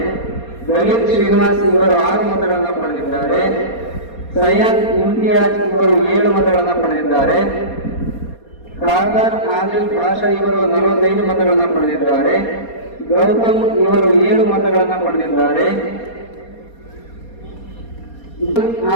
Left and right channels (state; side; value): late; right; 4.2 ms